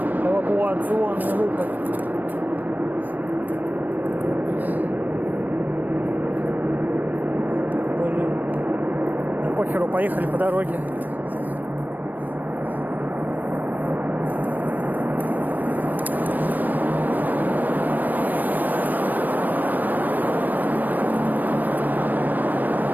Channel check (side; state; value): left; late; 0.087 ms